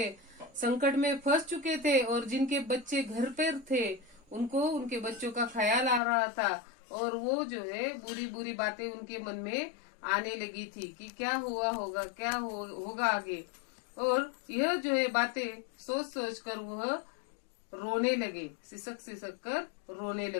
संकट में फंस चुके थे और जिनके बच्चे घर पर थे उनको उनके बच्चों का ख्याल आ रहा था। और वो जो है बुरी बुरी बातें उनके मन में आने लगी थी कि क्या होगा, होगा आगे। और यह जो है बातें सोच सोच कर वह रोने लगे, सिसक सिसक कर रोने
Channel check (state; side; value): drops out; right; at 6.0 s